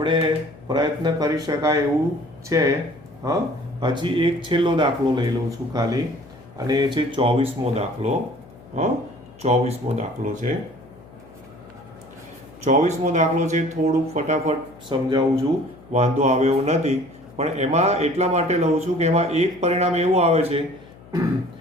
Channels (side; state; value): left; noise; hum, 22 dB below the sound